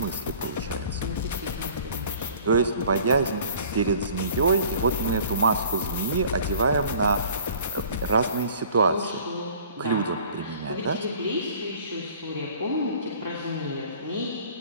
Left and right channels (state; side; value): inverted; both; correlation -0.50